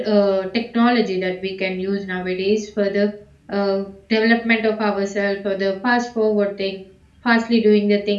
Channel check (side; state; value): both; identical; correlation 1.00